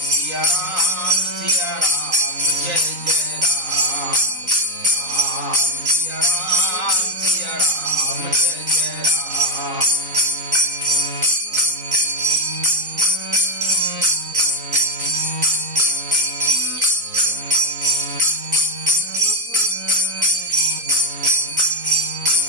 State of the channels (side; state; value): left; late; 4.0 ms